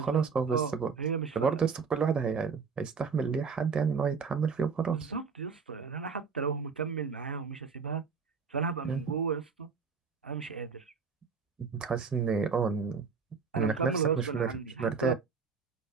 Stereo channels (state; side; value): quieter; left; 5.4 dB